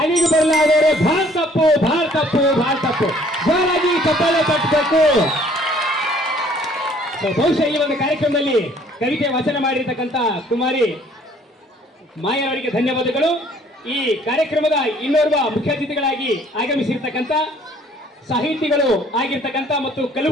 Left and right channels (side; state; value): both; normal; correlation 0.58